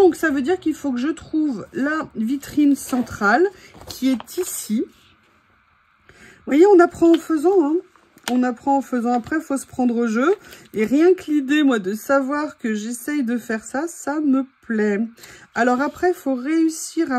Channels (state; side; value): identical; both; correlation 1.00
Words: ça veut dire qu'il faut que je trouve la vitrine centrale qui est ici. Vous voyez, on apprend en faisant, hein. On apprend en faisant. Après, il faut se prendre au jeu. Et rien que l'idée, moi, de savoir que j'essaye de faire ça, ça me plaît. Alors après, il faut réussir